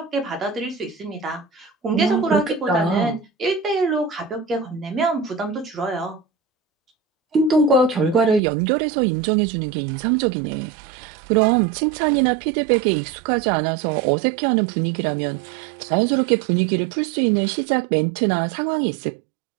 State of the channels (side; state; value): left; drops out; at 8.4 s